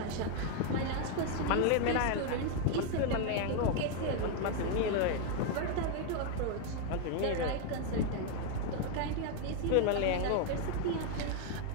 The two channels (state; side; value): different; both; correlation 0.01